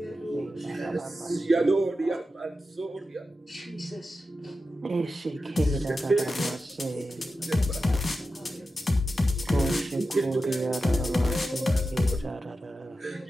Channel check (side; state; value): both; normal; correlation 0.91